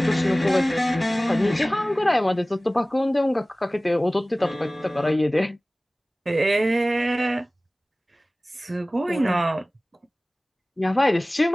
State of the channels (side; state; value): both; normal; correlation 0.98